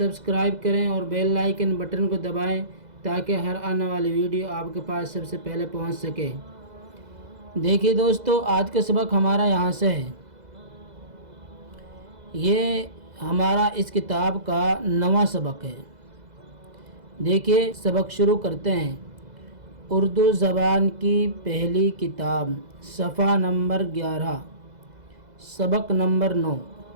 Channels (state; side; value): late; left; 2.0 ms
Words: کریں اور بیل آئیکن بٹن کو دبائیں تاکہ ہر آنے والی ویڈیو آپ کے پاس سب سے پہلے پہنچ سکے۔ دیکھیے دوستو، آج کا سبق ہمارا یہاں سے ہے۔ یہ ہمارا اس کتاب کا 9واں سبق ہے۔ دیکھیے سبق شروع کرتے ہیں۔ اردو زبان کی پہلی کتاب، صفحہ نمبر 11، سبق نمبر 9۔